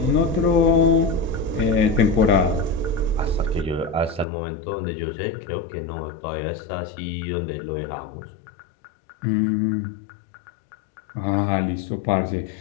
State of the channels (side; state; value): right; drops out; at 4.2 s